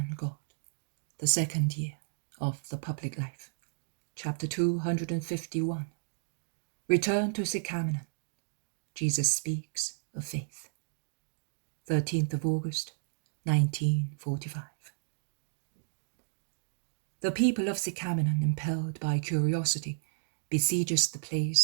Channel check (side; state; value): left; silent; digital silence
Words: God, the second year of the public life, chapter 251. Return to Sicaminon. Jesus speaks of faith. 13th of August, 1945. The people of Sicaminon, impelled by curiosity, besieges the